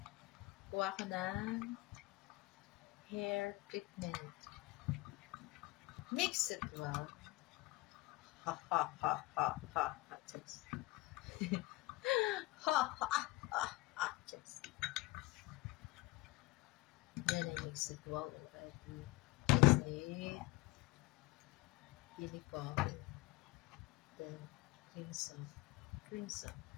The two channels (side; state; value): right; quieter; 20.9 dB